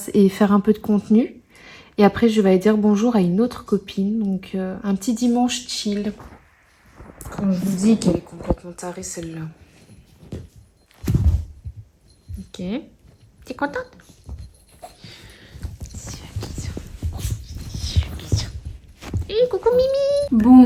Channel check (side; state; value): both; identical; correlation 1.00